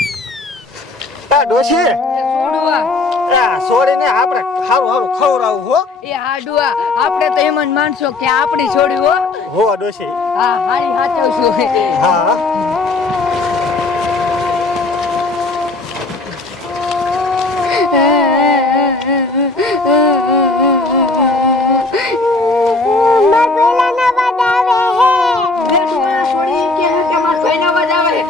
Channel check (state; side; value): quieter; right; 3.3 dB